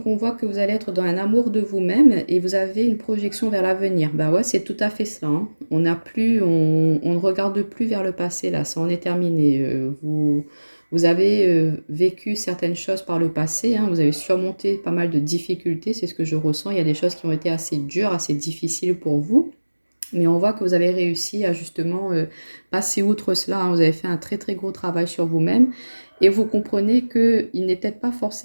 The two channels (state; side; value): inverted; both; correlation -1.00